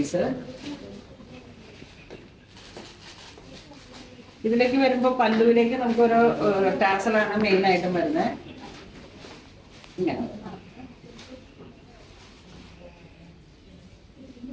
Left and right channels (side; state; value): both; identical; correlation 1.00